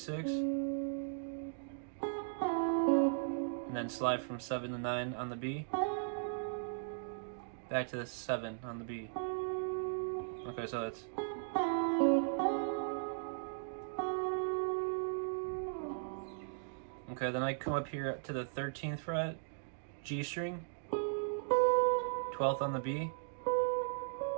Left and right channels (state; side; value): silent; left; digital silence